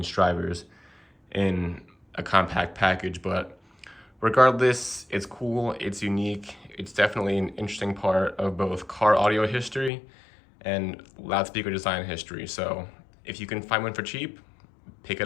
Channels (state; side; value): drops out; right; at 9.9 s